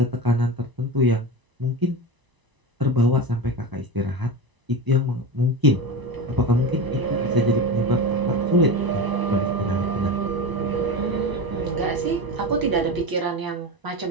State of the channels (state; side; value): late; left; 1.0 ms